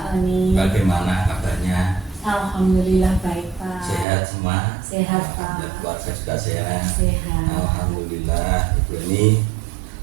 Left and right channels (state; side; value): drops out; left; at 4.0 s